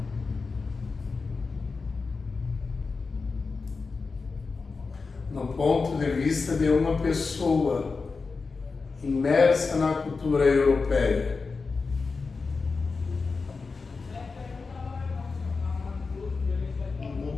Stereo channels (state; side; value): quieter; right; 4.4 dB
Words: no ponto de vista de uma pessoa imersa na cultura europeia. Do